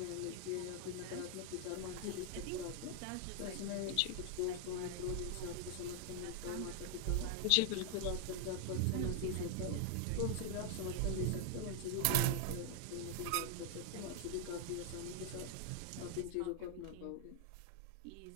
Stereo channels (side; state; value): both; different; correlation 0.00